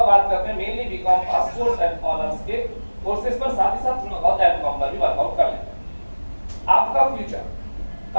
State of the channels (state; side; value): inverted; both; correlation -1.00